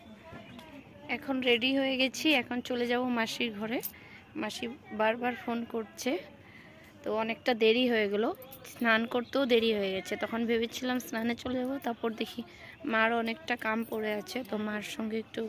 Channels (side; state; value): both; identical; correlation 1.00